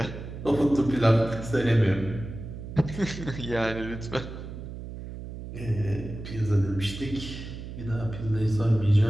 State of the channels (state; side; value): noise; right; hum, 10 dB below the sound